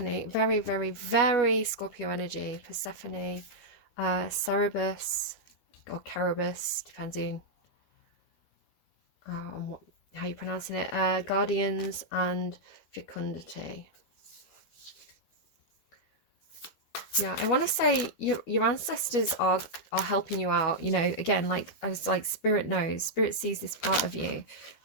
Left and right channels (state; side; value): late; right; 13 ms